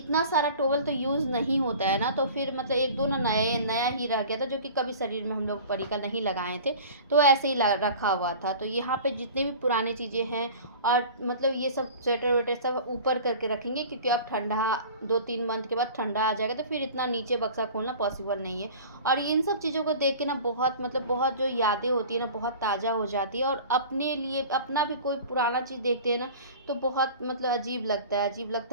सारा टॉवल तो यूज़ नहीं होता है ना, तो फिर मतलब 1-2 ना नया ही रह गया था, जो कि कभी शरीर में हम लोग परी का नहीं लगाए थे, तो ऐसे ही रखा हुआ था। तो यहाँ पे जितने भी पुराने चीज़ें हैं, और मतलब ये सब स्वेटर वेटर सब ऊपर करके रखेंगे, क्योंकि अब ठंडा 2-3 मंथ के बाद ठंडा आ जाएगा, तो फिर इतना नीचे बक्सा खोलना पॉसिबल नहीं है। और इन सब चीज़ों को देख के ना बहुत मतलब बहुत जो यादें होती है ना बहुत ताज़ा हो जाती है, और अपने लिए अपना भी कोई पुराना चीज़ देखते हैं ना तो बहुत मतलब अजीब लगता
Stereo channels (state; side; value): inverted; both; correlation -0.41